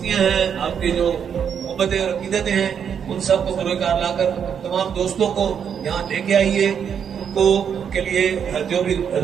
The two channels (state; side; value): quieter; left; 7.7 dB